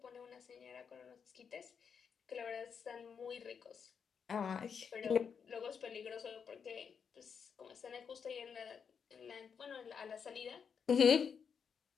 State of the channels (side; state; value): right; quieter; 6.6 dB